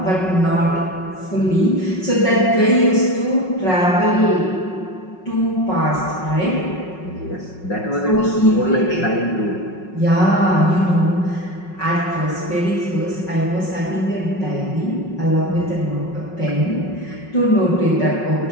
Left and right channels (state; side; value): late; right; 5.4 ms